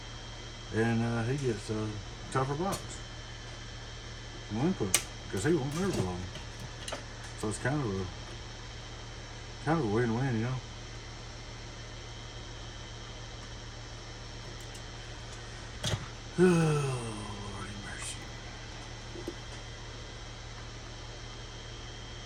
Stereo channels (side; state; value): both; identical; correlation 1.00